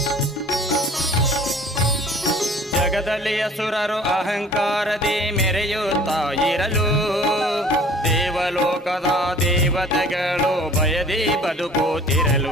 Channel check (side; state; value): both; normal; correlation 0.49